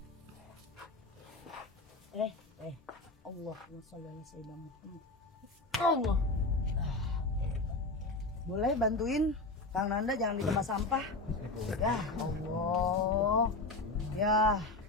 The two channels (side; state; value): right; quieter; 3.1 dB